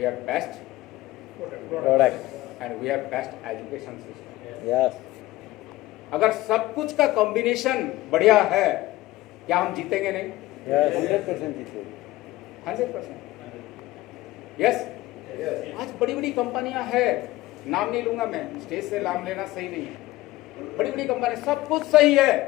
have best product and we have best education system. Yes, अगर सब कुछ का कॉम्बिनेशन बढ़िया है, क्या हम जीतेंगे नहीं? यस, 100% जीतेंगे। 100%। यस। आज बड़ी बड़ी कंपनियां हैं, नाम नहीं लूंगा मैं, स्टेज से नाम लेना सही नहीं है, बड़ी बड़ी कंपनी सब कुछ सही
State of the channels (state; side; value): quieter; right; 17.6 dB